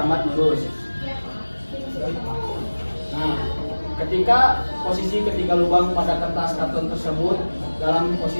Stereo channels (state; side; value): inverted; both; correlation -1.00